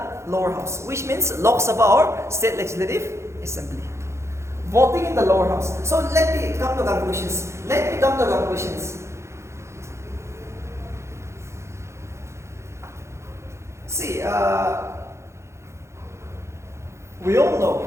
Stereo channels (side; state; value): left; late; 0.13 ms